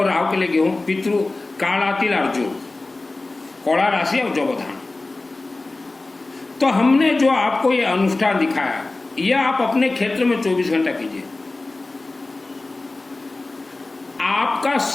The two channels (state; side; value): quieter; right; 3.2 dB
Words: राहु के लिए गेहूं, पितृ काला तिल और जौ, कौड़ा राशि और जौबधान। तो हमने जो आपको ये अनुष्ठान दिखाया, यह आप अपने क्षेत्र में 24 घंटा कीजिए। आपका